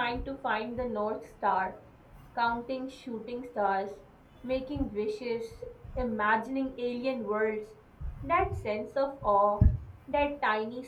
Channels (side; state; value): both; identical; correlation 1.00